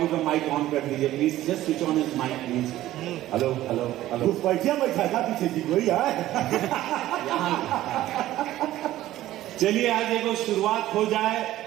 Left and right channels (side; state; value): left; quieter; 14.6 dB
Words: का माइक ऑन कर दीजिए please, just switch on his mic please. Hello hello hello, बैठिया बैठा था पीछे जी कोई है यहाँ। चलिए आज एक शुरुआत हो जाए,